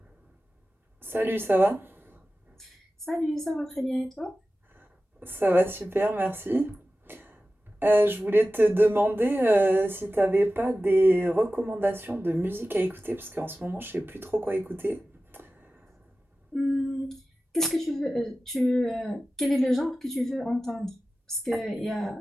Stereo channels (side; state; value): both; normal; correlation 0.95